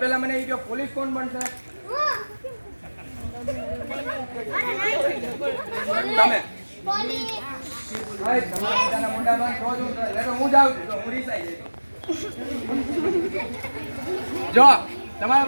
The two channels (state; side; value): inverted; both; correlation -1.00